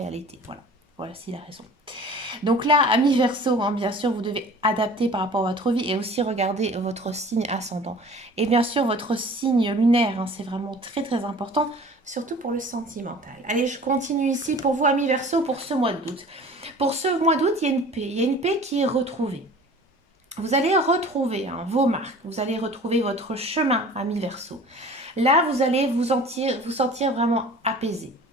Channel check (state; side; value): normal; both; correlation 0.45